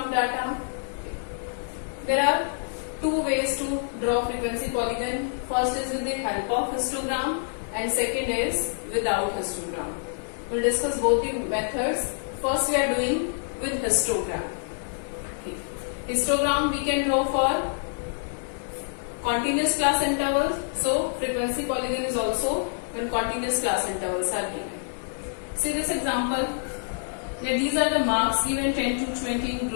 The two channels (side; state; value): right; silent; digital silence